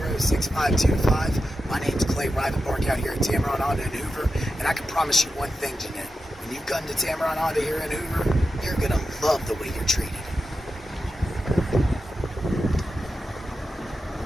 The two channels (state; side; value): normal; both; correlation 0.90